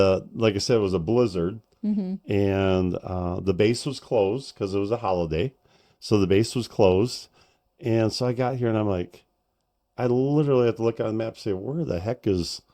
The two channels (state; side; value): identical; both; correlation 1.00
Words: like I said, it was a blizzard. Mm-hmm. And the base was closed because it was a holiday. So the base was closed. And so I got here and I'm like, I literally have to look on the map and say, where the heck is